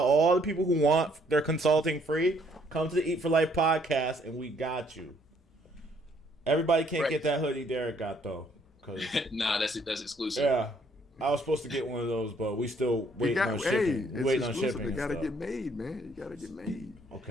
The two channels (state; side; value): normal; both; correlation 0.66